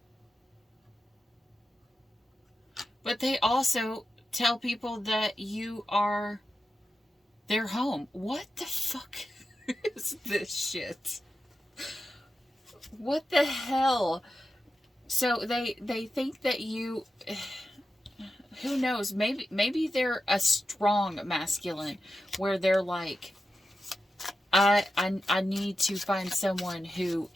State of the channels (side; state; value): both; normal; correlation 0.90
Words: But they also tell people that you are their home. What the fuck is this shit? What the hell? So they think that you, who knows, maybe they're a strong masculine where they're like, I need to find someone who